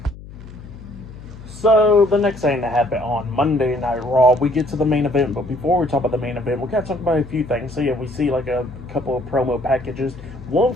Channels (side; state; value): left; noise; hum, 16 dB below the sound